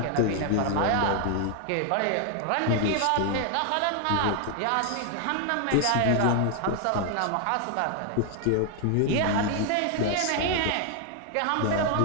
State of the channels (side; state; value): both; different; correlation 0.00